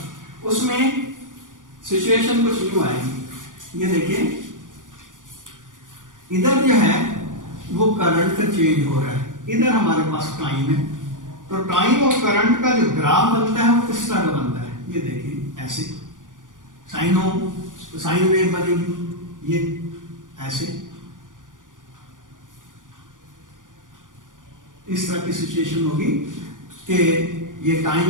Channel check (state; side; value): late; left; 0.88 ms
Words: उसमें सिचुएशन कुछ यूं आएगी, ये देखिए इधर जो है वो करंट का चेंज हो रहा है, इधर हमारे पास टाइम है, तो टाइम और करंट का जो ग्राफ बनता है वो किस तरह का बनता है, ये देखिए ऐसे साइन वेव बनेगी, ये ऐसे इस तरह की सिचुएशन होगी कि ये टाइम